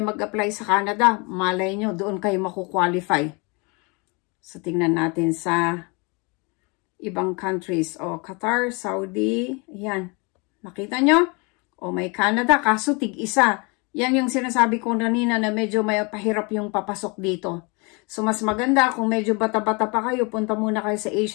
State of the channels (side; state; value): right; quieter; 30.0 dB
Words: mag-apply sa Canada. Malay nyo, doon kayo makukwalify. So, tingnan natin sa ibang countries. O, Qatar, Saudi, ayan. Nakita nyo? O, may Canada, kaso tig-isa. Yan yung sinasabi ko kanina na medyo may pahirap yung papasok dito. So, mas maganda kung medyo bata-bata pa kayo, punta muna kayo sa